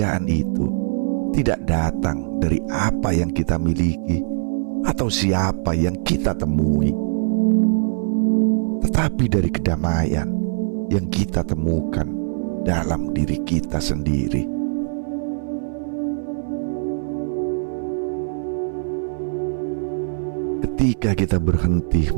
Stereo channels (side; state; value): left; silent; 60 dB below the other